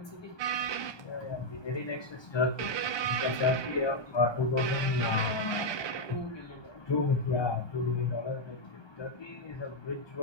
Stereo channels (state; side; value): late; right; 1.2 ms